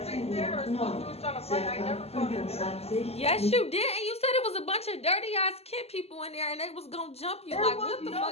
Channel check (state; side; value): late; right; 0.29 ms